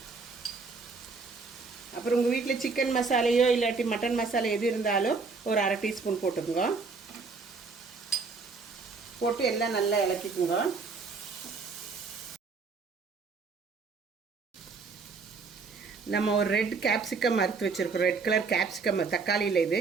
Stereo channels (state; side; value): quieter; left; 4.5 dB